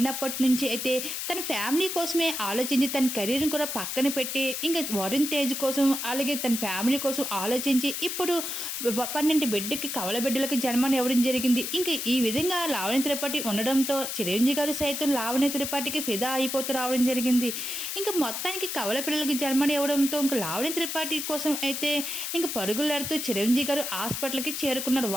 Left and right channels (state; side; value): noise; left; hiss, 4 dB below the sound